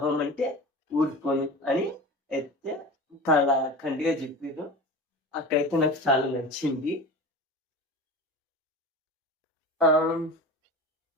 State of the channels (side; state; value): both; normal; correlation 0.32